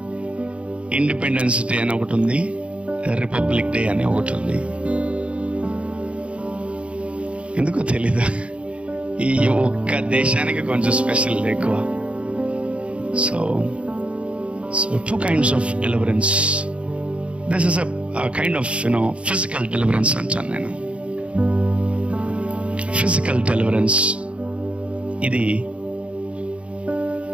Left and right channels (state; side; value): late; left; 0.061 ms